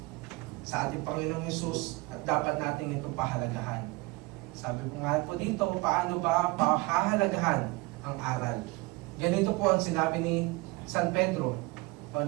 Sa ating Panginoong Hesus, at dapat natin ito pahalagahan. Sabi ko nga po dito, paano ba pahahalagahan ang aral? Ganito po ang sinabi ni San Pedro, o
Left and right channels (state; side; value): quieter; left; 23.5 dB